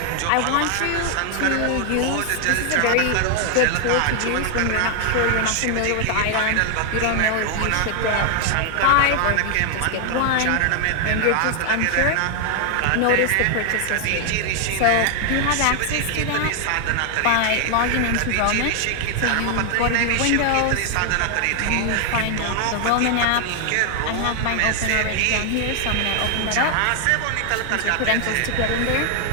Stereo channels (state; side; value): different; both; correlation 0.00